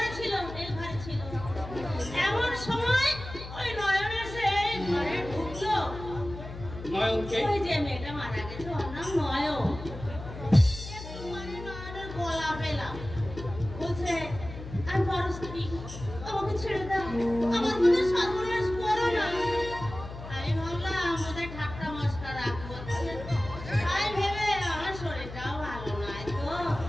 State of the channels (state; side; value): noise; left; hum, 11 dB below the sound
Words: ছিল, এই ঘরে ছিল। এমন সময় ওই নয়ন এসে ঘরে ঢুকলো। নয়নকে? ওই যে মেয়েটা মারা গেছে, ওর নাম নয়ন। একটু মানে নয়নের গলা পেলাম, বলছে আমি বড় স্ত্রী, আমাকে ছেড়ে দাও, আমার মনে সর্বনাশ করো না। আমি ভাবলাম আমাদের ঠাট্টা মস্করা করছে, তাই ভেবে আমার শরীরটাও ভালো নয় তো,